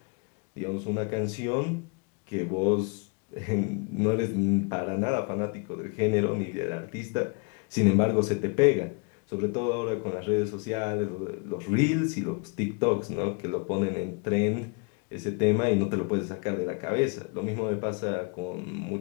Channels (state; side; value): quieter; right; 33.5 dB